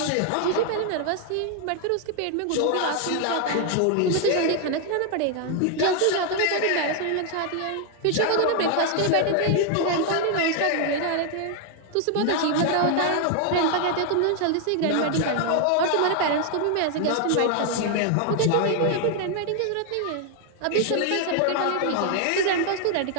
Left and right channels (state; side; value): different; both; correlation 0.00